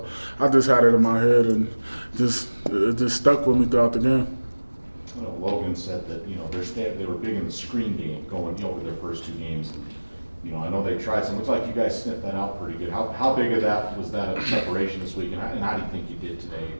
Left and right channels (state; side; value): inverted; both; correlation -1.00